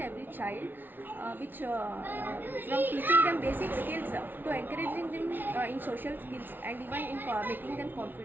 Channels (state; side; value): late; left; 0.092 ms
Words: every child, which from teaching them basic skills to encouraging them in social skills and even in making them